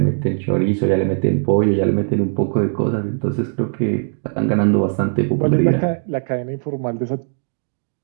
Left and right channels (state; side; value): silent; left; 66 dB below the other